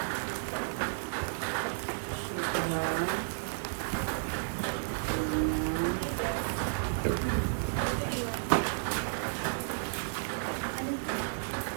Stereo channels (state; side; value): silent; left; digital silence